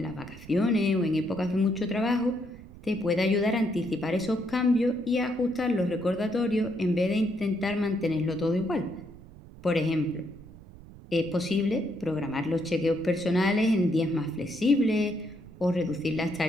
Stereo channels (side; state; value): right; noise; rumble, 19 dB below the sound